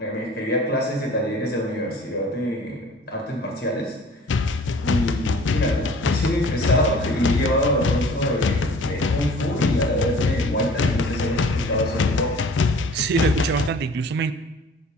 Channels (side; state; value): both; normal; correlation 0.47